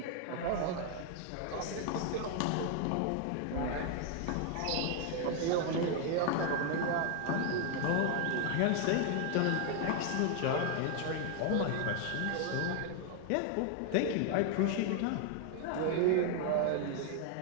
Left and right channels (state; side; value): different; both; correlation 0.00